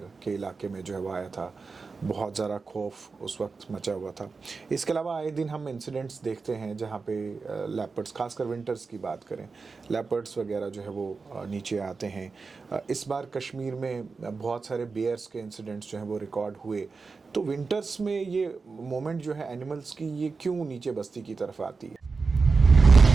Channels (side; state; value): left; quieter; 4.5 dB